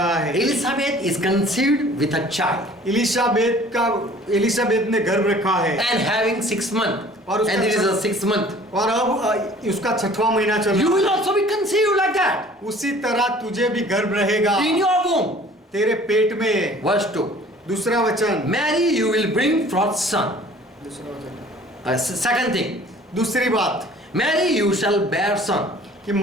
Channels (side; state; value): both; normal; correlation 0.51